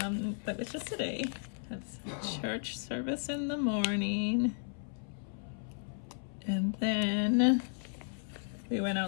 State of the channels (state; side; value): silent; right; 55 dB below the other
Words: it's just today. That's church service in the morning. And then we went